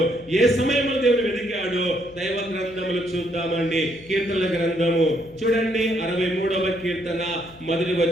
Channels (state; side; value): noise; left; hum, 24 dB below the sound